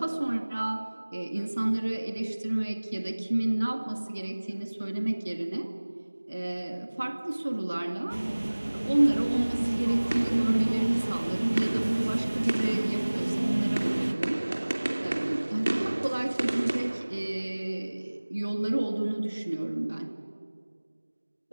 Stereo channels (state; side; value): inverted; both; correlation -1.00